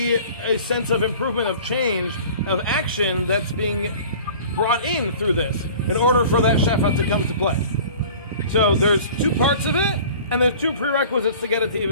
a sense of improvement, of change, of action that's being brought in through this in order for that shefa to come to play. So there's two parts of it, and there's two prerequisites to get it to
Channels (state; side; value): inverted; both; correlation -0.44